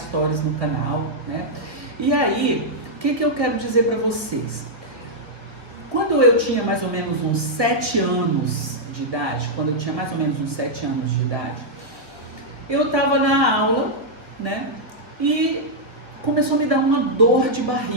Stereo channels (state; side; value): late; left; 1.8 ms